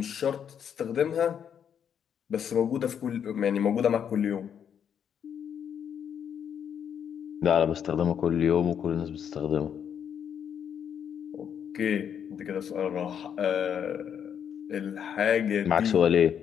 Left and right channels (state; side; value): quieter; right; 8.3 dB